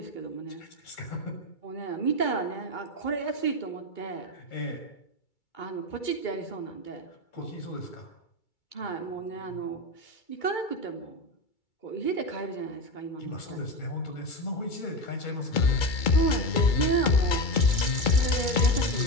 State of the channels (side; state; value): right; late; 2.3 ms